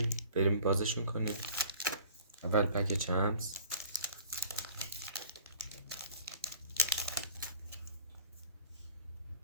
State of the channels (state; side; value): inverted; both; correlation -0.48